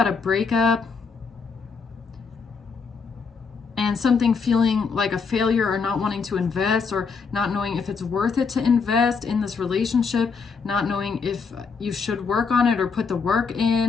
a breakup and and something feeling like a failure, or not wanting to invest, or not knowing if it's worth it to invest in this relationship, not knowing if you should work on it or put the work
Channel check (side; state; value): right; quieter; 5.3 dB